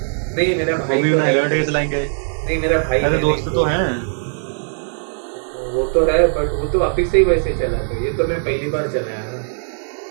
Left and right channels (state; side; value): silent; left; digital silence